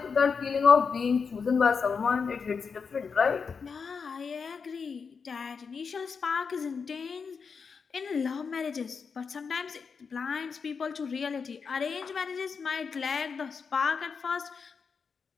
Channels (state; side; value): quieter; right; 5.6 dB